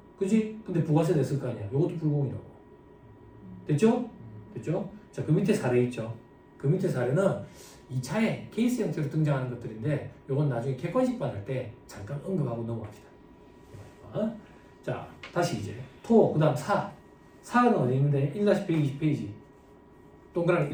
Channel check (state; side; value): identical; both; correlation 1.00